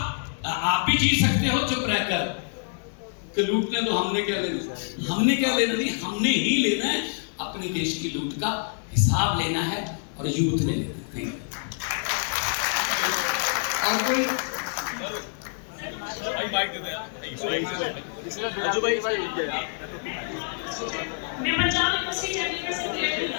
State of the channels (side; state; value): right; silent; 61 dB below the other